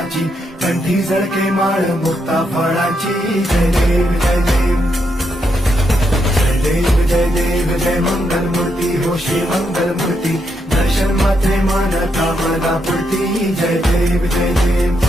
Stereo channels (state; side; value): normal; both; correlation 0.80